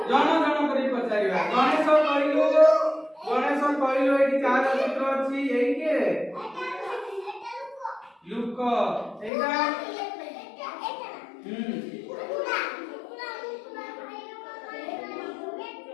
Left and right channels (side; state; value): right; drops out; at 9.3 s